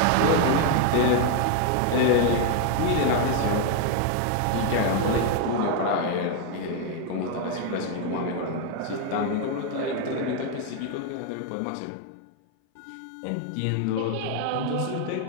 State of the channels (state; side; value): different; both; correlation 0.01